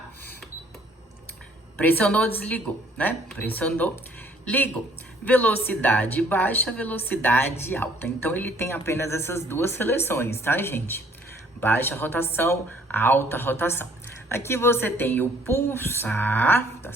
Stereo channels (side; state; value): both; normal; correlation 0.60